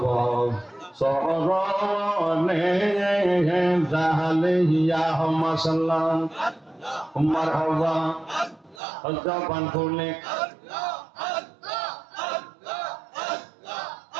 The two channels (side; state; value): left; drops out; at 8.8 s